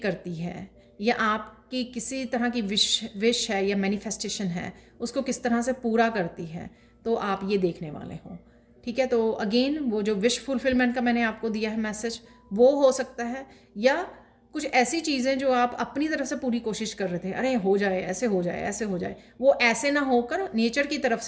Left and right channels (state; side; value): identical; both; correlation 1.00